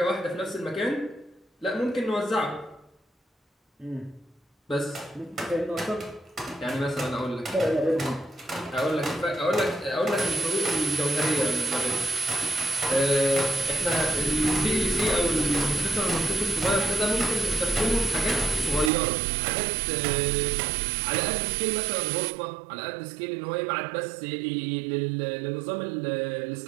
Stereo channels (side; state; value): left; drops out; at 18.9 s